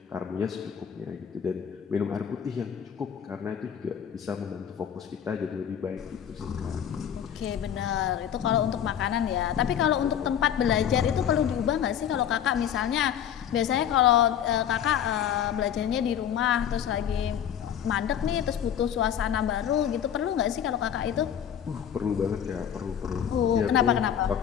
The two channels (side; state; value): right; quieter; 9.2 dB